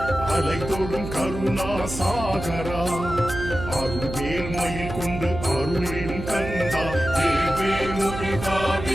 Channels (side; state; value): right; noise; hum, 8 dB below the sound